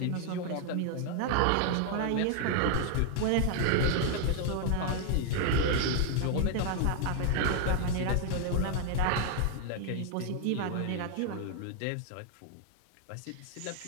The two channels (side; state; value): both; different; correlation 0.00